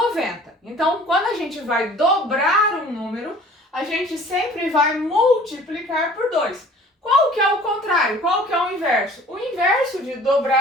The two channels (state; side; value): normal; both; correlation 0.50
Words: Então, quando a gente vai dobrar um número, a gente sempre vai multiplicar por 2. Qual que é o contrário? Qual que é o inverso? O inverso de